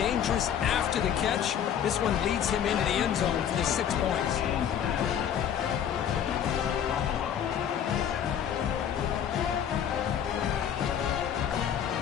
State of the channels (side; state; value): right; quieter; 9.1 dB